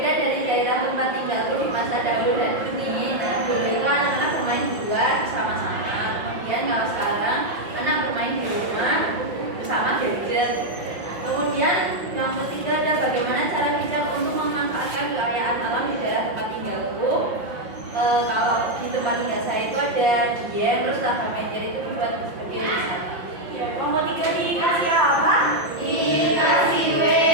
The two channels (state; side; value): late; left; 5.6 ms